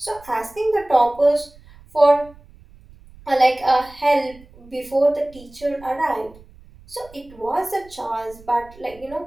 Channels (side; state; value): right; noise; rumble, 23 dB below the sound